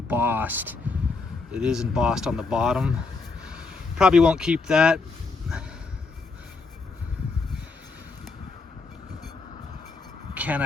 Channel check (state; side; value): quieter; right; 4.1 dB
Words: It is embossed on the bottom. Probably won't keep that. Can't